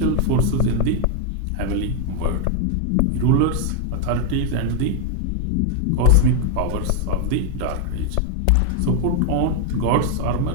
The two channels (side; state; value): both; different; correlation 0.01